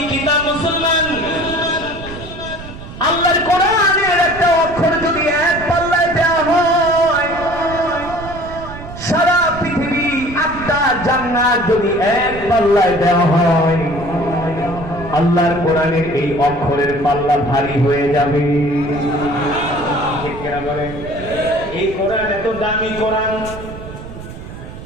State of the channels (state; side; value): noise; right; rumble, 12 dB below the sound